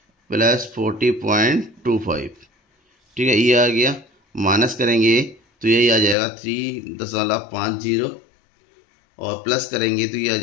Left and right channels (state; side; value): drops out; right; at 6.2 s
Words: प्लस 40.25। ठीक है, ये आ गया। माइनस करेंगे तो यही आ जाएगा 3.50 और प्लस करेंगे तो ये आ